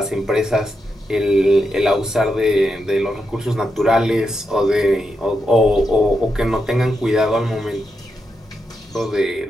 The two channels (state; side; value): normal; both; correlation 0.85